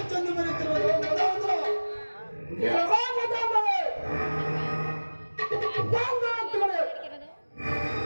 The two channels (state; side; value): inverted; both; correlation -1.00